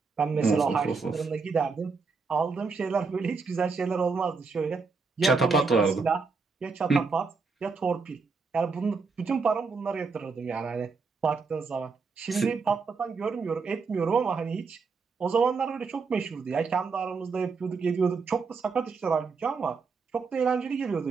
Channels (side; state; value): left; quieter; 4.7 dB